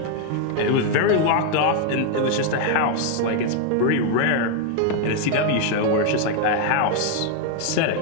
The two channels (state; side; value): different; both; correlation 0.00